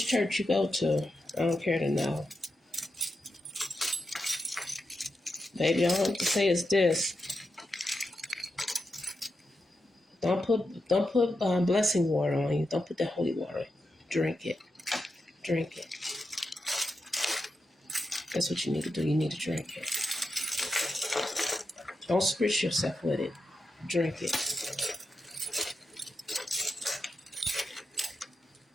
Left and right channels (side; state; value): both; normal; correlation 0.87